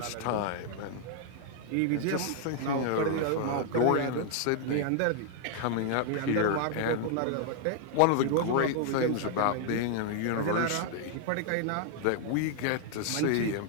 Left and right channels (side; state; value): both; different; correlation 0.00